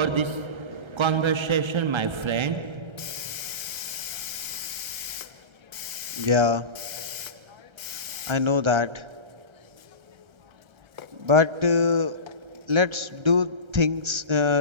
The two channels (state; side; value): late; left; 1.3 ms